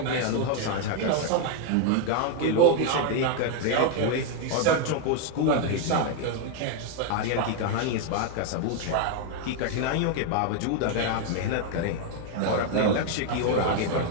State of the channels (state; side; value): different; both; correlation 0.01